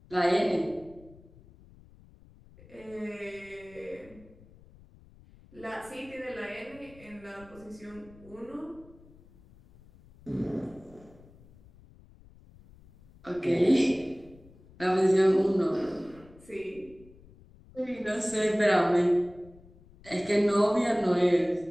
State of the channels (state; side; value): noise; left; rumble, 24 dB below the sound